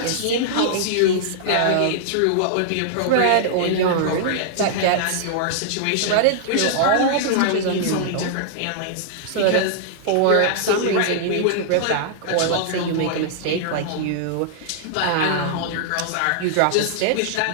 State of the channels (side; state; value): both; different; correlation -0.01